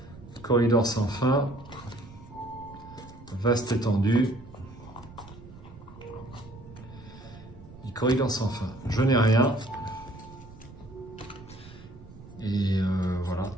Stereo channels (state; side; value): noise; right; rumble, 18 dB below the sound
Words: Corridor sans fin. Vaste étendue. Et corridor sans fin. Je n'ai rien. Et voilà.